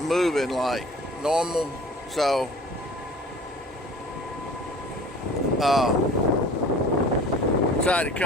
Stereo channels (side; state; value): both; normal; correlation 0.45